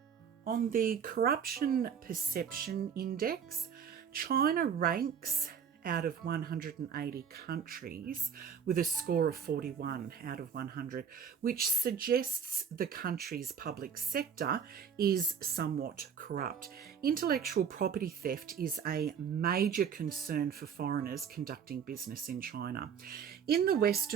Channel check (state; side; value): quieter; left; 7.3 dB